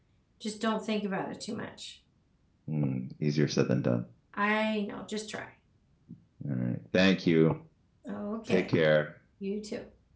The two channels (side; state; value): both; identical; correlation 1.00